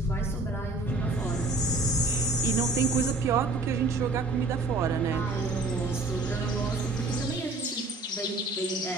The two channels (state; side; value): quieter; left; 3.2 dB